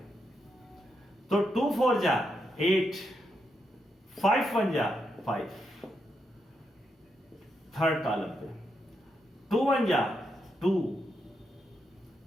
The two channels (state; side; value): normal; both; correlation 0.82